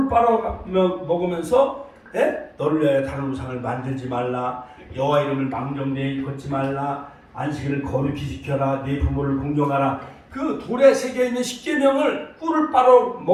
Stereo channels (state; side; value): identical; both; correlation 1.00